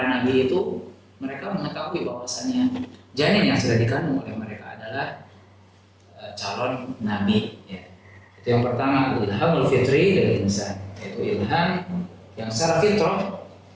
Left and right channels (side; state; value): both; identical; correlation 1.00